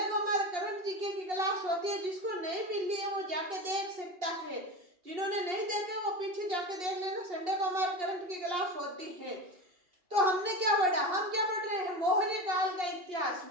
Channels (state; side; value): late; left; 2.8 ms